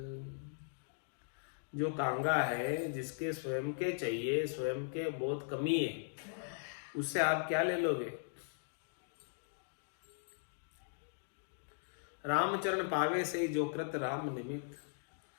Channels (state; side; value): silent; right; digital silence